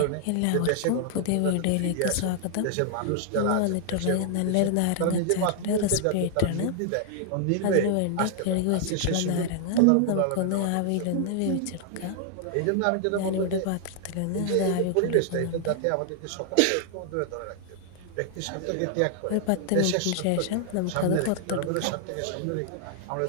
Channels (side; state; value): both; different; correlation 0.00